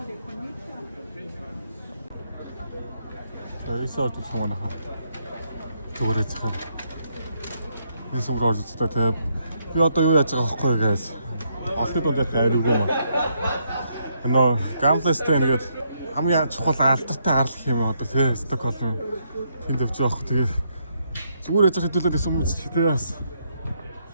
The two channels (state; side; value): inverted; both; correlation -0.75